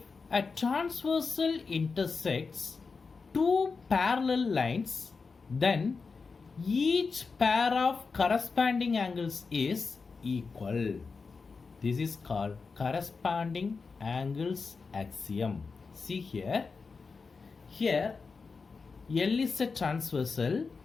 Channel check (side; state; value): right; quieter; 4.7 dB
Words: a transversal intersects two parallel lines, then each pair of corresponding angles is equal. This is called corresponding angles axiom. See here. Here L is a transversal.